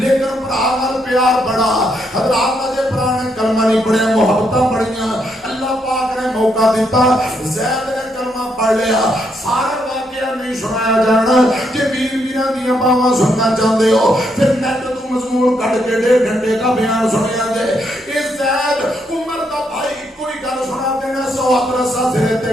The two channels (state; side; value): normal; both; correlation 0.77